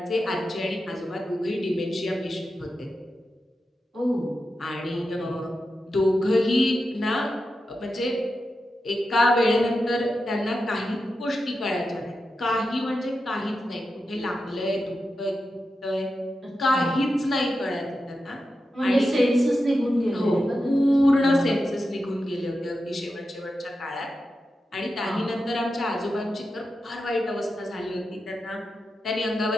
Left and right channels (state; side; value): normal; both; correlation 0.90